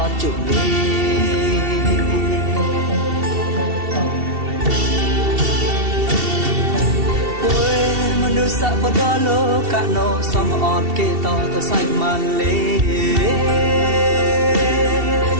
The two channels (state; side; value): late; left; 2.7 ms